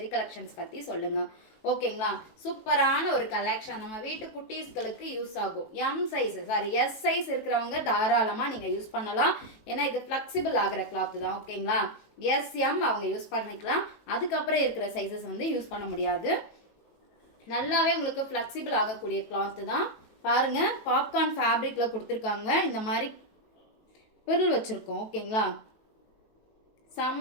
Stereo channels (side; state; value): right; late; 18 ms